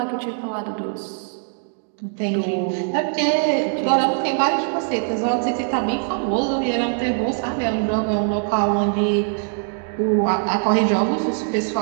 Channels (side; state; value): left; silent; 64 dB below the other